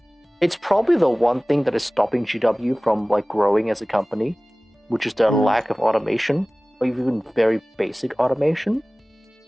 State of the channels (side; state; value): both; normal; correlation 0.98